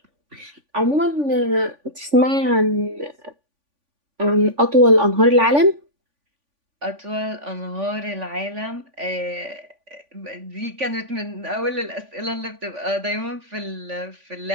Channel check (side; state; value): left; late; 3.5 ms